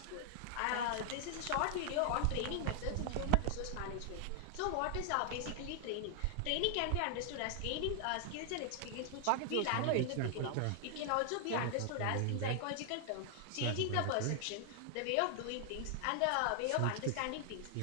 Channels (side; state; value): both; different; correlation 0.00